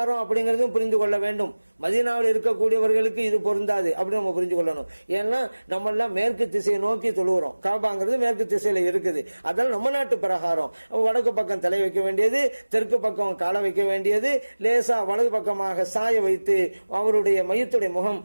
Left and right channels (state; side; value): inverted; both; correlation -1.00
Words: அப்படிங்கறதும் புரிந்து கொள்ள வேண்டும். மதீனாவில் இருக்கக்கூடியவர்களுக்கு இது பொருந்தாது அப்படி நம்ம புரிஞ்சு கொள்ளணும். ஏன்னா நம்ம எல்லாம் மேற்கு திசையை நோக்கி தொழுகிறோம், காபாங்கிறது மேற்கு திசையில இருக்குது. அதனால நம்ம நாட்டு பிரகாரம் வடக்கு பக்கம் தலை வைக்க வேண்டியது, தெற்கு பக்கம் காலை வைக்க வேண்டியது, லேசா வலது பக்கமாக சாய வைத்து அவருடைய மையத்துடைய முகம்